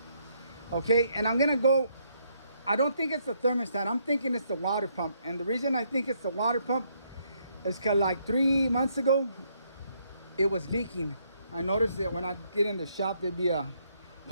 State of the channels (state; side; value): inverted; both; correlation -0.72